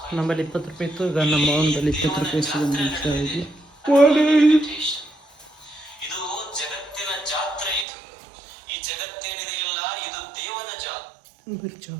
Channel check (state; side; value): drops out; left; at 7.9 s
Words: ನಮ್ಮಲ್ಲಿ 20 ರೂಪಾಯಿ ಇತ್ತು. ಈಗ ನಮ್ಮ ಅವನ ಬಳಿ 20 ರೂಪಾಯಿ ಸಿಗೊಂಡು ಬರೀ